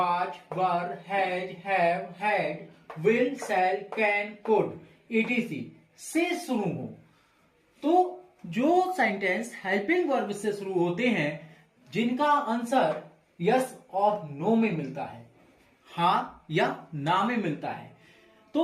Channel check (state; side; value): identical; both; correlation 1.00